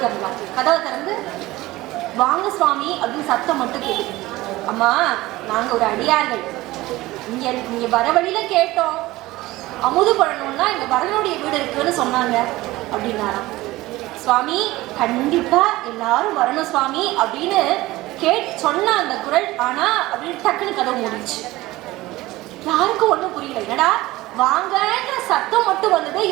திறந்தாங்க. கதவை திறந்து வாங்க சுவாமி அப்படின்னு சத்தம் மட்டும் கேட்குது. அம்மா நாங்க ஒரு அடியார்கள், இங்க வர வழியில கேட்டோம், அமுது பண்ணணும்னா இங்க வரதனுடைய வீடு இருக்குன்னு சொன்னாங்க அப்படின்னாராம். சுவாமி கண்டிப்பா எல்லாரும் வரணும் சுவாமி அப்படின்னு சொன்ன அந்த குரல், ஆனா அப்படின்னு டக்குன்னு கதவு மூடிச்சு. யாருக்கும் ஒண்ணும் புரியல, என்னடா வாங்கன்ற சத்தம் மட்டும் வந்தது,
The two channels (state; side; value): quieter; left; 18.4 dB